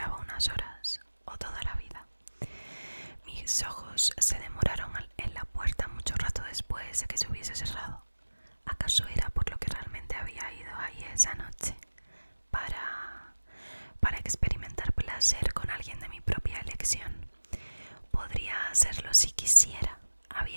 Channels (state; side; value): inverted; both; correlation -1.00